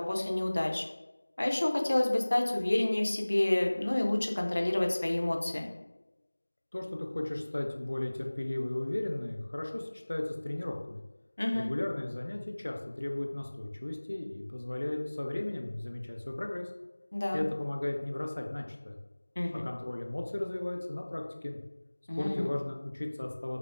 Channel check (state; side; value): inverted; both; correlation -1.00